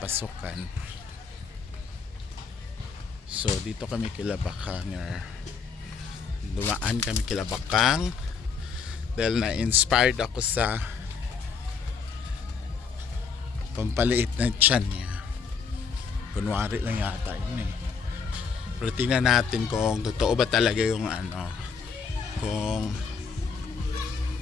So dito kami kila Bakang, dumaan kami kila Bakang dahil na-inspired ako sa pampaliit na tiyan niya. Kunwari lang yata yun eh. Pero tingnan natin kung totoo ba talaga yung kung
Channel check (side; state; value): right; quieter; 5.6 dB